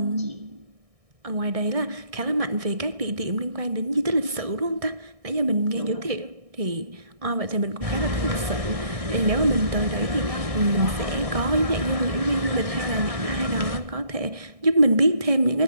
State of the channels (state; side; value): late; left; 1.6 ms